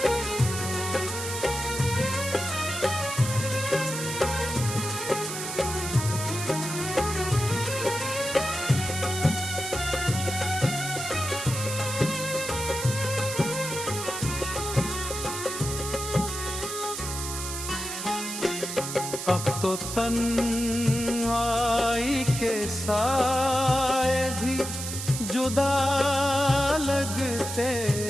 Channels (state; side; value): noise; right; hiss, 6 dB below the sound